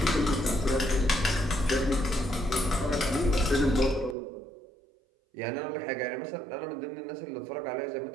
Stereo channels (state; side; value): drops out; left; at 4.2 s